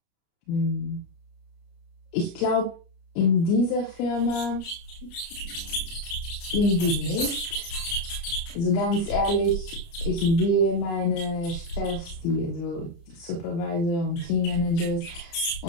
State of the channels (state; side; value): late; right; 29 ms